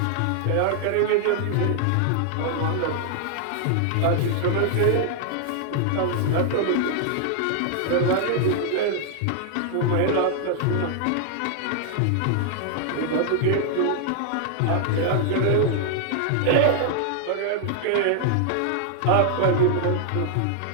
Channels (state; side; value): different; both; correlation 0.00